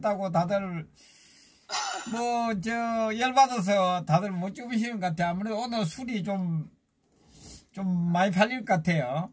다들, 열받아서 다들 못 주무시는 것 같아요. 아무래도 오늘 술이 좀 많이 팔릴 것 같아요.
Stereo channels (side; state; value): both; identical; correlation 1.00